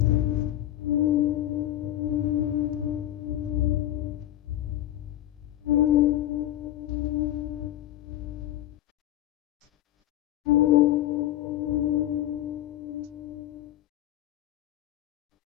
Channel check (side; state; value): right; quieter; 13.3 dB